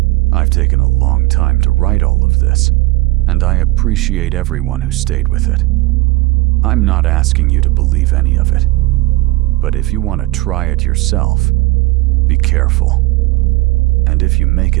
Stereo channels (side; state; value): left; quieter; 19.3 dB